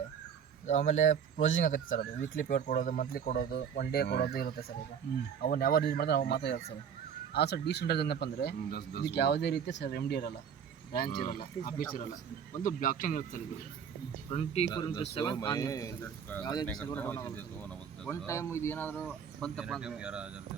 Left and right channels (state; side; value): quieter; left; 7.7 dB